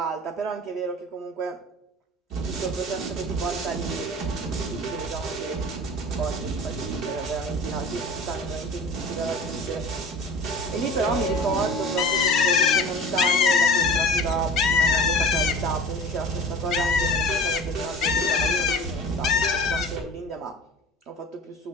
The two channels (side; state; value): both; normal; correlation 0.39